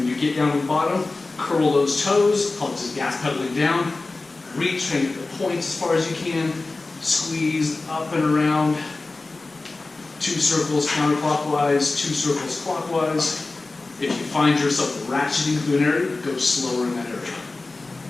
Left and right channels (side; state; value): right; quieter; 3.4 dB